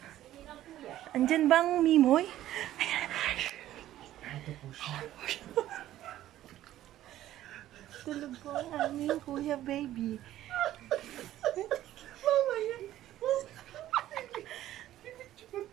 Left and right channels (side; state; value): left; quieter; 13.5 dB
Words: Andyan bang Mimoy? Tulog po ang aming kuya baby. Mama yan.